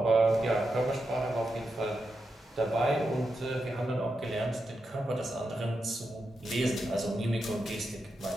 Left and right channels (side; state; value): both; normal; correlation 0.87